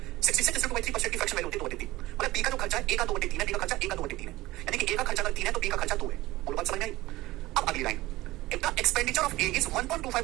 66.3% की फ्रैक्शन वैल्यू होती है 2/3। मतलब बी का जो खर्चा है ए का 2/3 है, बी का खर्चा ए का 2/3 है, यानी कि ए का खर्चा अगर 3 है तो बी का खर्चा 2 है। बोलो बात समझ में आई? अब अगली line, if the expenditure of A is 1.25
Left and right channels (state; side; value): quieter; left; 18.2 dB